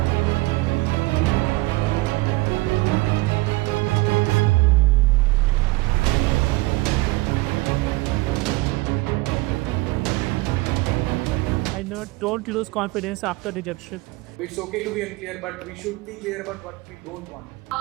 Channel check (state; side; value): quieter; left; 22.0 dB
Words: Don't lose confidence after rejection. It's okay to be unclear, but we should be clear about what we don't want.